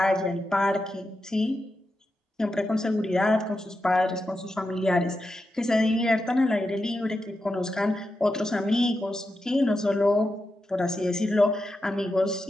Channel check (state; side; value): normal; both; correlation 0.88